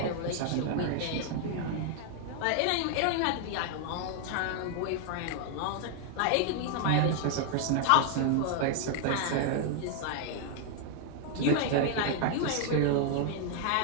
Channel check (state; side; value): different; both; correlation 0.00